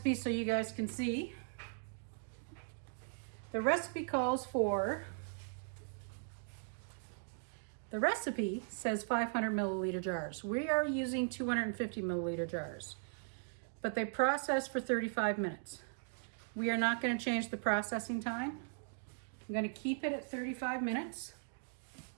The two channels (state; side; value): silent; left; digital silence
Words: so you guys can see. The recipe calls for, the recipe says 500 milliliter jars. We are using 250 milliliter jars, but they process for 35 minutes. We are not going to change the processing time. I'm going to keep it at 35 minutes.